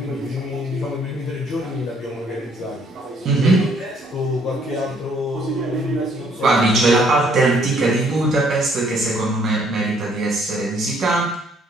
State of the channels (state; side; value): normal; both; correlation 0.65